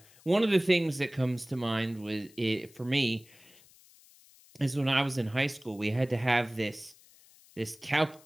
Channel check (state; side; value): noise; left; hiss, 26 dB below the sound